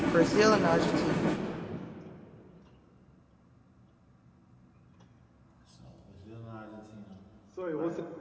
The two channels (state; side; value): identical; both; correlation 1.00